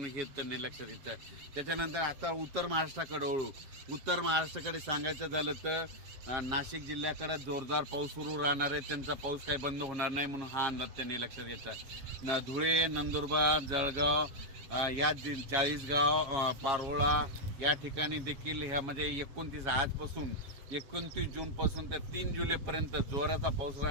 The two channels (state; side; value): late; left; 7.3 ms